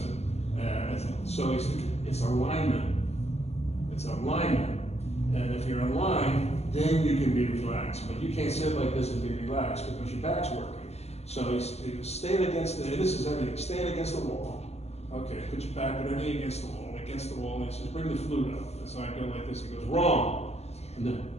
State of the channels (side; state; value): right; late; 0.30 ms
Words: So he said, it's alignment. It's alignment. And if you're in line, then you can be relaxed. But you can't sit like this and be relaxed because your back's working. So he goes, stand against and this is everything, stand against the wall. Okay, put your back, put everything against the wall, and he says, bring the flute up. And so I go like this, he goes, wrong. And then,